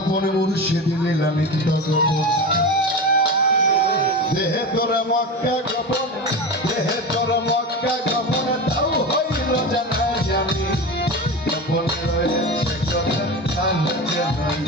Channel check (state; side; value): normal; both; correlation 0.25